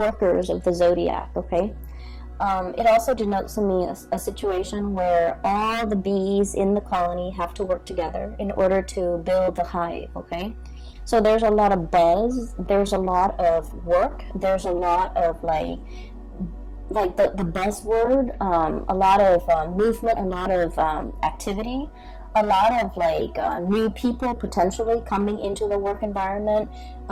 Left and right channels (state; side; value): identical; both; correlation 1.00